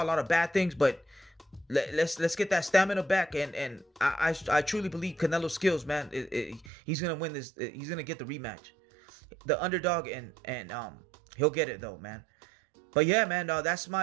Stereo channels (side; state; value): left; drops out; at 6.7 s